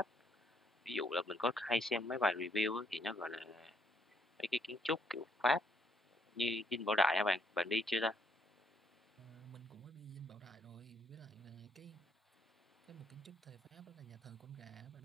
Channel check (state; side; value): normal; both; correlation 0.71